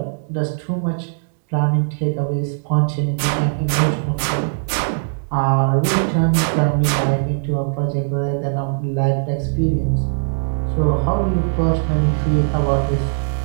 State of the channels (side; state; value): left; silent; digital silence